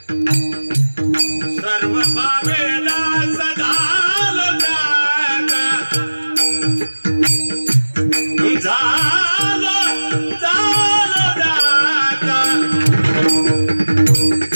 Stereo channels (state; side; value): inverted; both; correlation -1.00